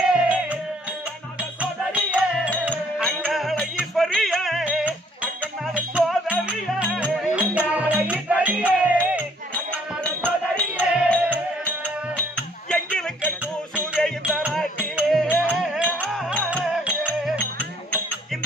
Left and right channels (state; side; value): normal; both; correlation 0.62